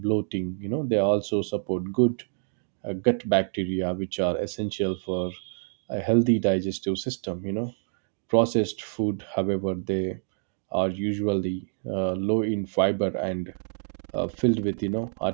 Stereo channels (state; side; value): silent; left; digital silence